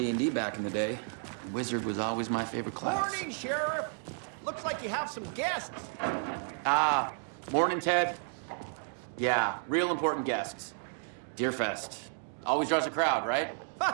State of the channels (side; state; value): left; silent; 56 dB below the other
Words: back in the day. Wizard was always my favorite class. Morning, Sheriff. Looks like you have some guests. Ah, morning, Ted. Yeah, real important guests. Deerfest. Always draws a crowd, right?